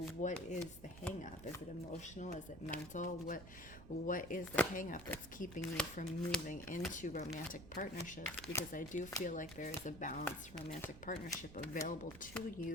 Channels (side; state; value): right; noise; rumble, 15 dB below the sound